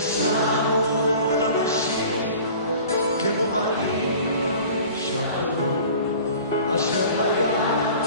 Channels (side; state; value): both; inverted; correlation -0.44